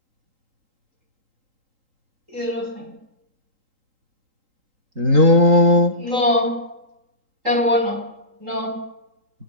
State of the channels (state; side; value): late; left; 3.8 ms